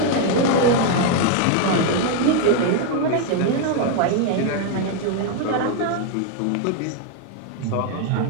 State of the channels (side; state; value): both; different; correlation 0.01